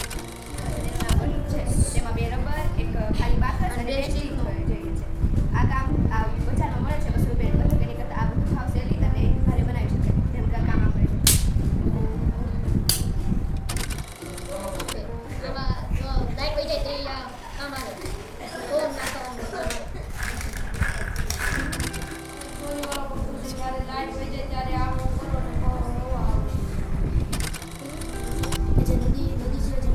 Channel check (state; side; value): identical; both; correlation 1.00